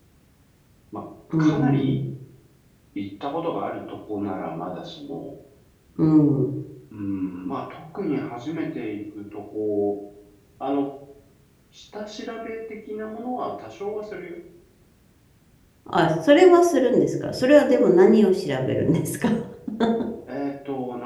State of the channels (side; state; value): both; identical; correlation 1.00